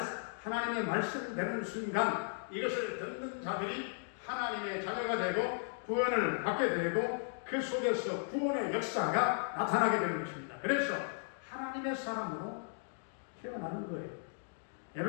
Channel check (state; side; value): silent; right; digital silence